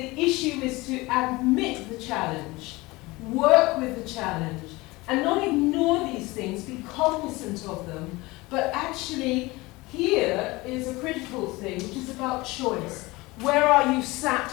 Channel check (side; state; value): right; quieter; 21.9 dB